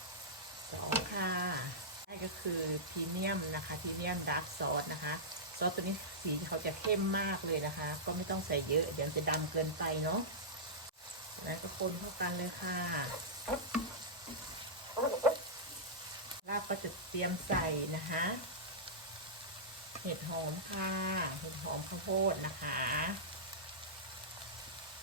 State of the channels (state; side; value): normal; both; correlation -0.13